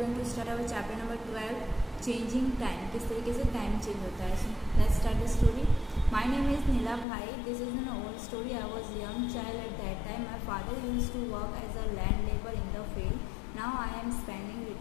to start our chapter number 12, Changing Time. किस तरीके से time change होता है. So let's start the story. My name is Nila Bhai. This is an old story. I was a young child at that time. My father used to work as a land laborer in the field. Now I am spending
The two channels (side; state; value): right; drops out; at 7.1 s